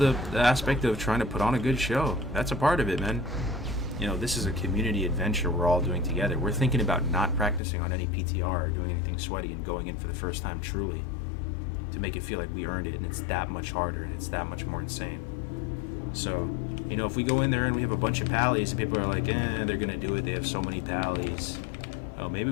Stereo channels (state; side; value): drops out; right; at 7.6 s